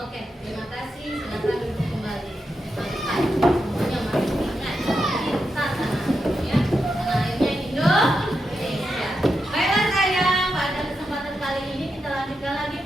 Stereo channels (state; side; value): normal; both; correlation 0.86